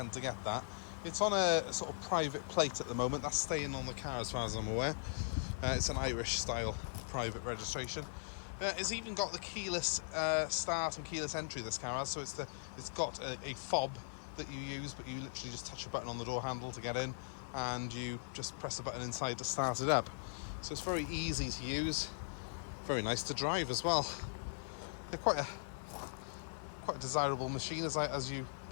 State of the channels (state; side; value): silent; right; 51 dB below the other